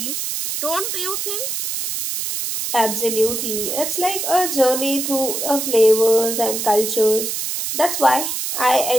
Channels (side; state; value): right; noise; hiss, 3 dB below the sound